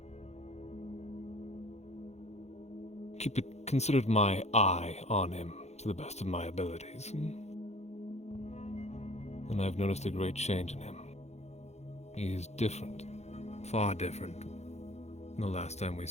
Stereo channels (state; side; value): late; right; 0.32 ms